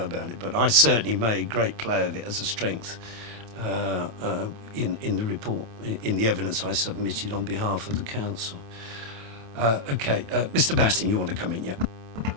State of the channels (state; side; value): late; left; 27 ms